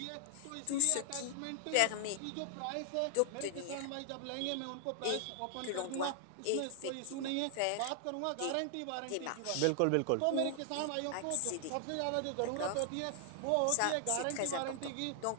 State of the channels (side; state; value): both; different; correlation 0.00